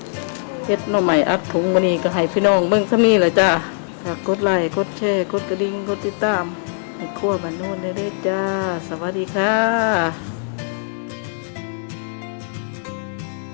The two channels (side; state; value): right; silent; 65 dB below the other